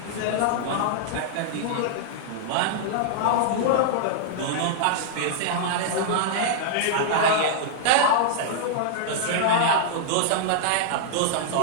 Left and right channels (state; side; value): different; both; correlation -0.02